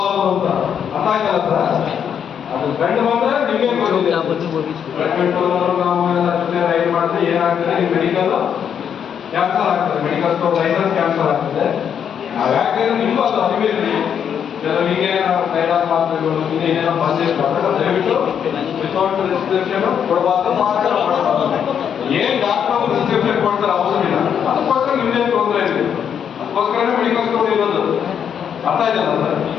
ಅಂತ ಅರ್ಥ ಆಯ್ತಲ್ಲ ಸರ್. ಅದು ಗಂಡು ಬಂದ್ರೆ ನಿಮಗೆ ನಾವು ರೈಡ್ ಮಾಡಿದ್ರೆ ಏನಾಗ್ತದೆ, ಮೆಡಿಕಲ್ ಕ್ಯಾನ್ಸಲ್ ಆಗ್ತದೆ, ಮೆಡಿಕಲ್ ಸ್ಟೋರ್ ಲೈಸೆನ್ಸ್ ಕ್ಯಾನ್ಸಲ್ ಆಗ್ತದೆ. ನಾವು ಯಾಕಂದ್ರೆ ನಿಮ್ಗೂ ಅದು ಅರಿವಿರಲಿ, ಕೆಲವರಿಗೆ ಕೈಲಾದ ಮಾತ್ರೆಗಳು ಇನ್ನೇನೇನೋ ಬಂದಿರ್ತಾರೆ, ದಯವಿಟ್ಟು ವಿತೌಟ್ ರಿಸ್ಟ್ರಿಕ್ಷನ್ ಕೊಡಬಾರ್ದು. ಏನ್ ಡಾಕ್ಟರ್ ರಿಸ್ಟ್ರಿಕ್ಷನ್ ಕೊಡ್ತಾರೆ ಅವಸರ ಇಲ್ಲ, ಅದಕ್ಕೋಸ್ಕರ ನಿಮ್ದೇನು ತೊಂದರೆ ಇದೆ, ಅದಕ್ಕೋಸ್ಕರನೇ ಮೆಡಿಕಲ್ ಸ್ಟೋರ್ ಇರೋದು. ಅರ್ಥ ಇದೆಯಲ್ಲ ಸರ್.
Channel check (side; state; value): right; quieter; 8.2 dB